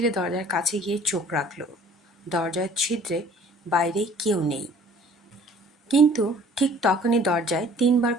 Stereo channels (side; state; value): both; normal; correlation 0.53